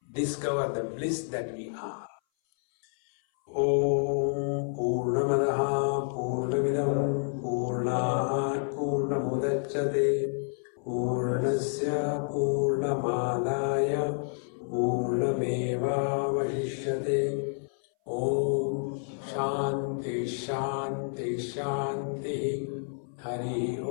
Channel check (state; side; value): silent; right; 58 dB below the other